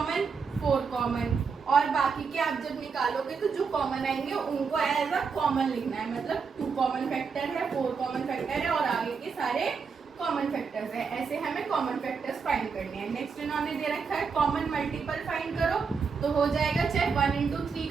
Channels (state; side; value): quieter; left; 5.5 dB